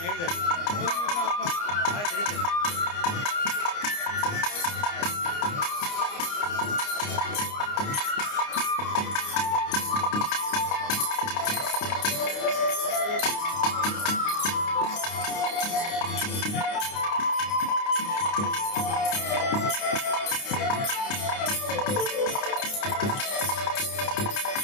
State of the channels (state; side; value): late; right; 29 ms